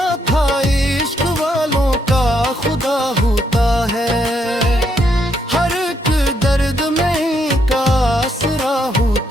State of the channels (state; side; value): normal; both; correlation 0.75